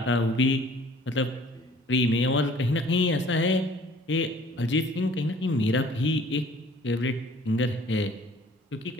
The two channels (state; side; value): normal; both; correlation 0.53